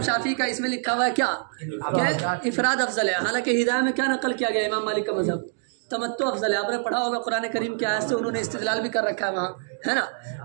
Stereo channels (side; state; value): left; silent; digital silence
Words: شافعی کا اس میں لکھا ہوا ہے کیا کہ افراد افضل ہے، حالانکہ ہدایہ میں کیا نقل کیا گیا امام مالک کا مذہب تمتع افضل ہے۔ آپ نے پڑھا ہوگا قرآن کریم کی آیت سے انہوں نے استدلال بھی کر رکھا ہے وہاں، ہے نا،